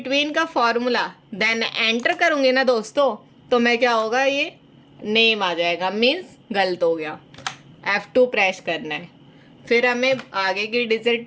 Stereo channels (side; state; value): both; identical; correlation 1.00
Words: का फॉर्मूला, देन एंटर करूँगी ना दोस्तों, तो मैं क्या होगा, ये नेम आ जाएगा, मीन्स गलत हो गया। F2 प्रेस करना है, फिर हमें आगे की